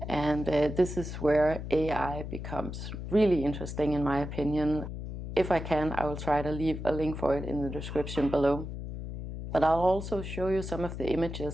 And this is where AI becomes really interesting, in my opinion. If I can, I will try to leave a link for it in the description below. But I'll also show you some of the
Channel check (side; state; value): left; noise; hum, 7 dB below the sound